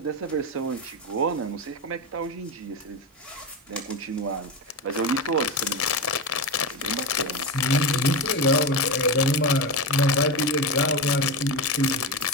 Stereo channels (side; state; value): both; normal; correlation 0.17